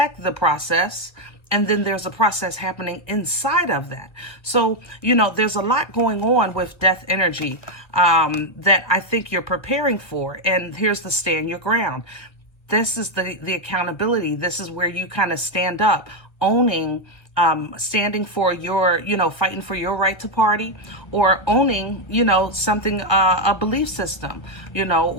the process. And then there's a process happening inside of that. So, there's a lot going on with death energy that I think you're preparing for. And here's the stand your ground. This is the accountability. This is where you kind of stand up, owning, standing for your, fighting for your right to party, or owning, something, a belief system,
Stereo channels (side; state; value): right; late; 1.3 ms